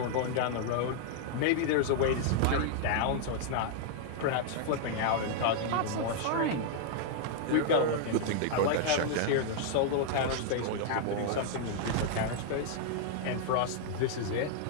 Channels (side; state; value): both; different; correlation -0.01